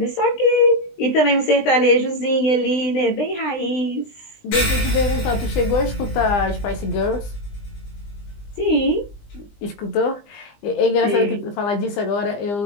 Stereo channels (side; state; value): right; late; 20 ms